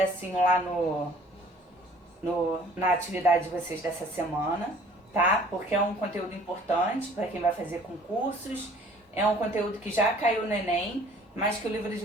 lá na atividade de vocês dessa semana, tá? Porque é um conteúdo importante para quem vai fazer concursos, é um conteúdo que já caiu no Enem, mas que o livro de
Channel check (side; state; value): both; normal; correlation 0.54